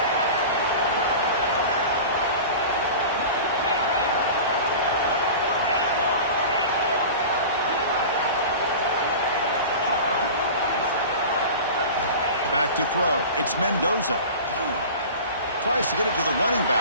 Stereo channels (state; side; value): inverted; both; correlation -0.35